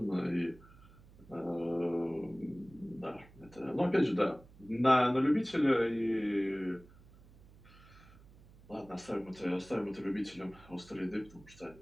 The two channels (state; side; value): noise; right; hum, 23 dB below the sound